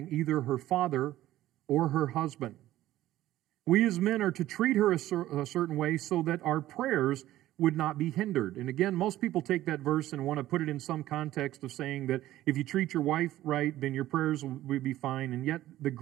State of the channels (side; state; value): left; quieter; 14.5 dB